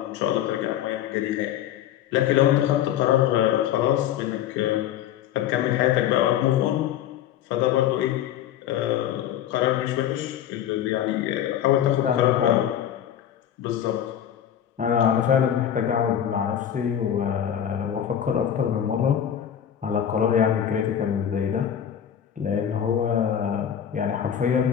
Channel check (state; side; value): quieter; right; 10.1 dB